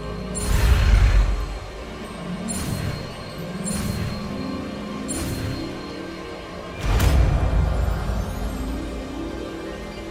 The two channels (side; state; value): both; identical; correlation 1.00